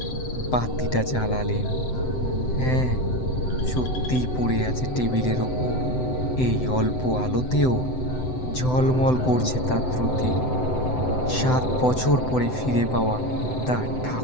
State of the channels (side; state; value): right; late; 7.9 ms